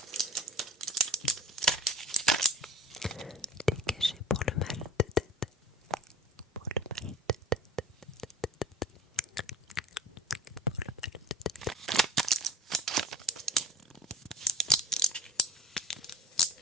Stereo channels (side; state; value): both; normal; correlation 0.43